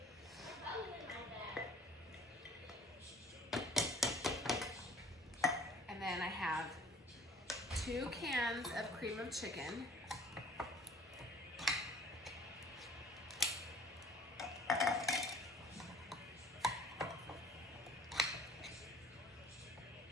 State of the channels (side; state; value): both; normal; correlation 0.50